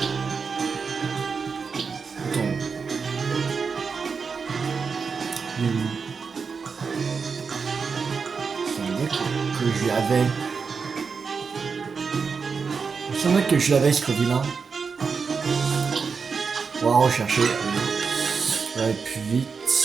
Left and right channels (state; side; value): quieter; left; 5.4 dB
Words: Attends. Que je l'avais. Il me semblait que je l'avais ce Scoville. On va rechercher. On va aller plus vite.